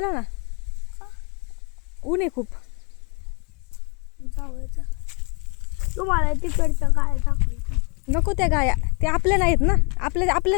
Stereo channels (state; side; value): quieter; right; 33.7 dB